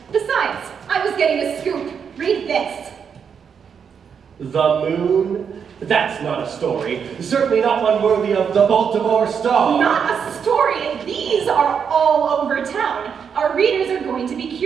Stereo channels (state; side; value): quieter; left; 7.0 dB